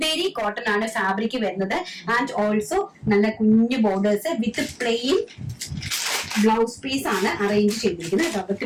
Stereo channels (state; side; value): identical; both; correlation 1.00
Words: കോട്ടൺ ആണ് ഫാബ്രിക് വരുന്നത്. ആൻഡ് ഓൾസോ നല്ല കുഞ്ഞു borders with plain blouse piece ആണ് അറേഞ്ച് ചെയ്തിരിക്കുന്നത് കേട്ടോ.